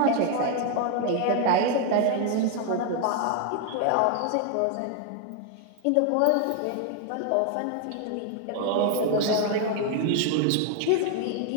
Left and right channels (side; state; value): both; different; correlation 0.00